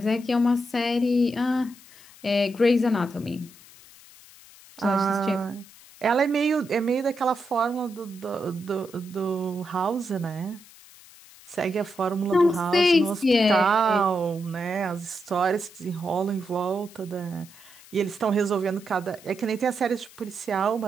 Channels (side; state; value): left; noise; hiss, 22 dB below the sound